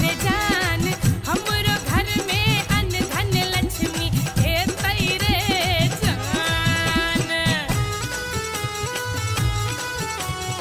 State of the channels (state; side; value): identical; both; correlation 1.00